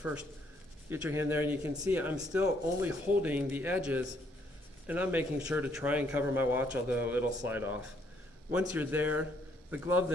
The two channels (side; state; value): both; normal; correlation 0.69